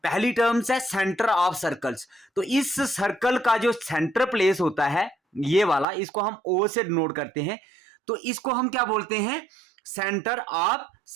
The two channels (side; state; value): left; drops out; at 5.9 s